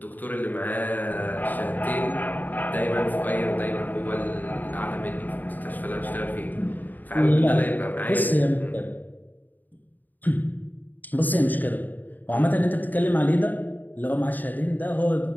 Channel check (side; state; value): right; late; 0.085 ms